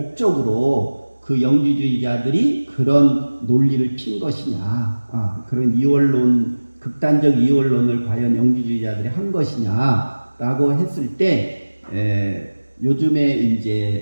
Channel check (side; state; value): both; inverted; correlation -1.00